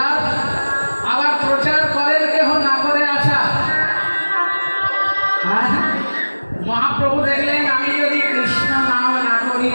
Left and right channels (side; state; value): both; inverted; correlation -1.00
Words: আবার প্রচার করেন কেউ, না করে আচার। মহাপ্রভু দেখলেন আমি যদি কৃষ্ণ নাম না করি